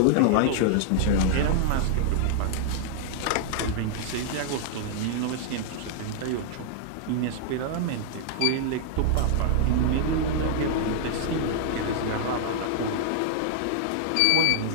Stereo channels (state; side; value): different; both; correlation -0.01